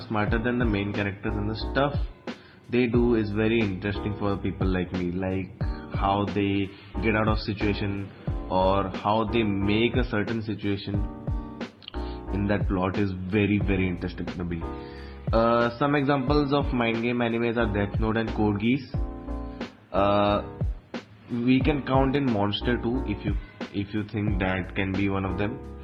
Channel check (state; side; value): identical; both; correlation 1.00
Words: smarter than the main characters, and the stuff they do is very interesting for people like me, like how they get out of situation or how they make a certain situation in that plot is very interesting to me. Some examples of mind game animes are Death Note and Code Geass. We can count in Monster too if you think that can be one of them.